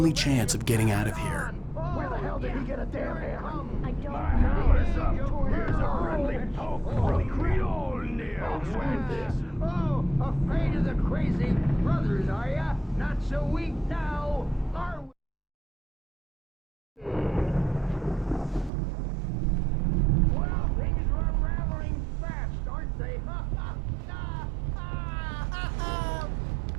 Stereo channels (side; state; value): left; drops out; at 18.7 s